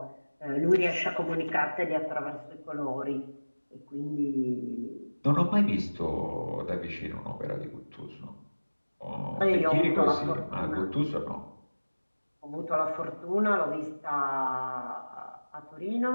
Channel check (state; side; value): inverted; both; correlation -1.00